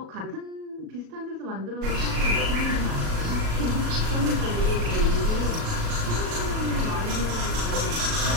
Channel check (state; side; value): late; left; 37 ms